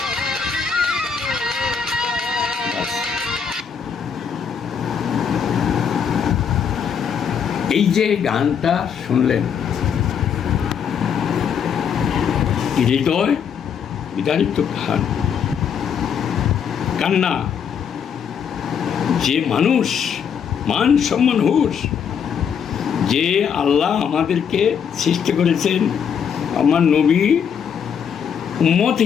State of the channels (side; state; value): right; quieter; 7.4 dB